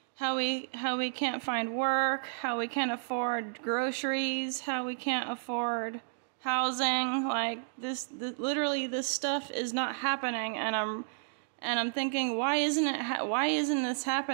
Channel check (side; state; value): left; silent; digital silence